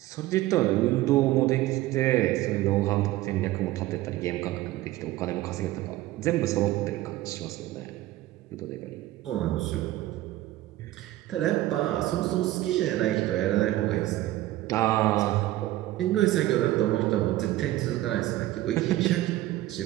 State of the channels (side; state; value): left; quieter; 16.0 dB